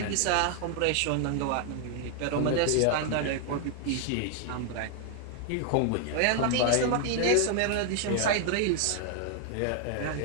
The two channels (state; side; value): different; both; correlation 0.00